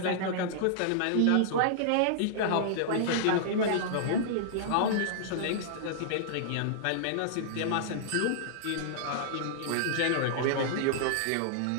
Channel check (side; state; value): both; different; correlation -0.01